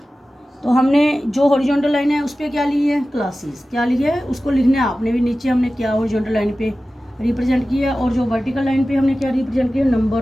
तो हमने जो हॉरिजॉन्टल लाइन है उस पर क्या ली है, क्लासेस। क्या ली है उसको लिखना है आपने भी नीचे। हमने क्या हॉरिजॉन्टल लाइन पे रिप्रेजेंट किया, और जो वर्टिकल लाइन पे हमने क्या रिप्रेजेंट किया,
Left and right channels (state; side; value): normal; both; correlation 0.95